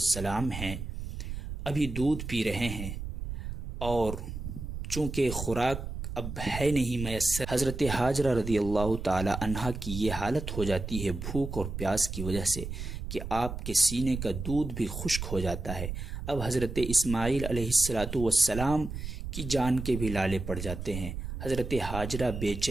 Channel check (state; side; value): noise; right; rumble, 6 dB below the sound